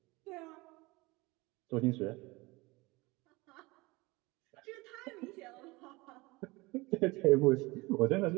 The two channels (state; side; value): quieter; left; 23.1 dB